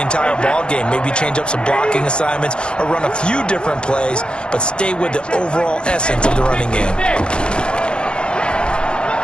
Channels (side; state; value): right; late; 0.053 ms